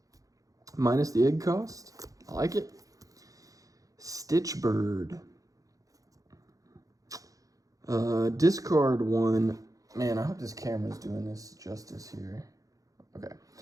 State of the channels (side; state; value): left; late; 0.17 ms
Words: minus the egg cost. I like it. Stitch bird. Discard 1. Man, I hope this camera's doing this justice here. Okay.